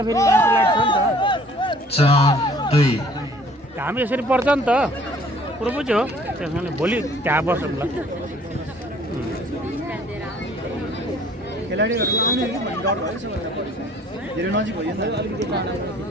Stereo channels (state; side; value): normal; both; correlation 0.55